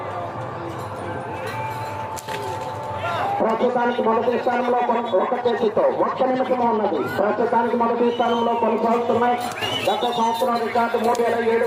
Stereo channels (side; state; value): both; identical; correlation 1.00